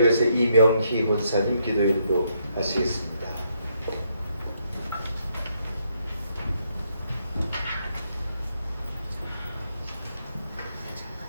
위해서 이명희 권사님 기도인도 하시겠습니다.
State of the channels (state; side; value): inverted; both; correlation -0.75